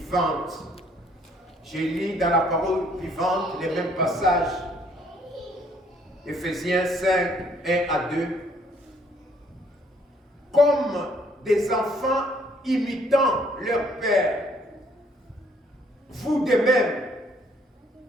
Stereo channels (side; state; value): both; normal; correlation 0.64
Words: Je lis dans la parole vivante les mêmes passages. Éphésiens 5, 1 à 2. Comme des enfants imitant leur père, vous de même,